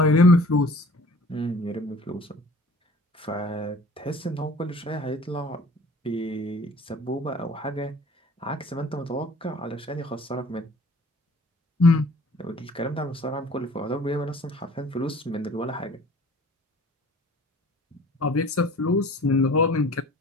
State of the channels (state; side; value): normal; both; correlation 0.49